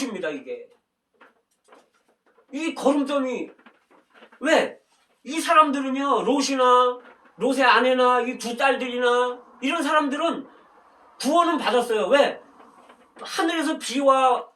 이게 이 거름더미. 왜? 이 사람들은요 롯의 아내나 이 두 딸들이나 이런 사람들은 구원은 받았어요. 왜? 하늘에서 비와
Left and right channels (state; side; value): identical; both; correlation 1.00